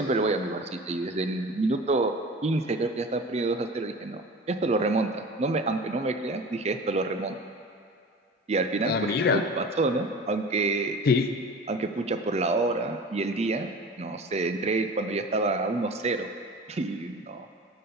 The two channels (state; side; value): normal; both; correlation 0.37